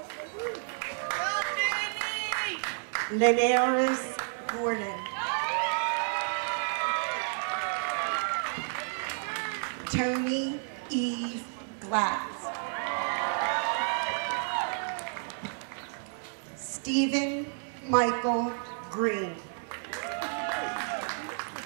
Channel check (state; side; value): silent; left; 57 dB below the other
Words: Linares Gordon. Tony Eve Glass. Stephen Michael Green.